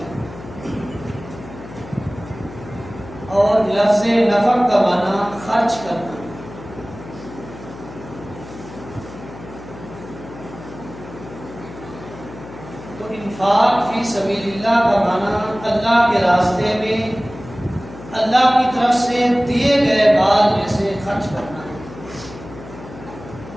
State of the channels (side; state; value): left; noise; hum, 15 dB below the sound